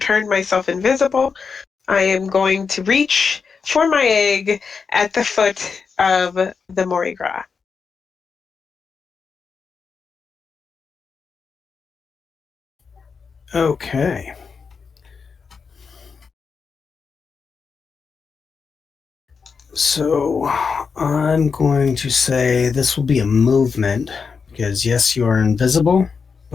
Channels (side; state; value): right; quieter; 5.5 dB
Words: myself invisible, I am going to reach for my egg at the foot of the Mardi Gras. Okay. So I'm going to say this will be a movement because yes, you are invisible,